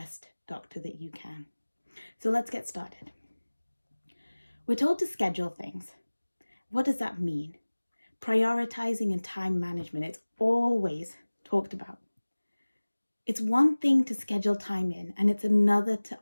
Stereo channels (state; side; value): inverted; both; correlation -1.00